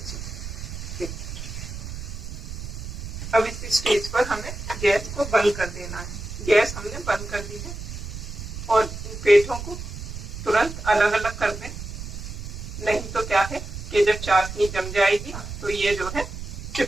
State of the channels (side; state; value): right; noise; rumble, 8 dB below the sound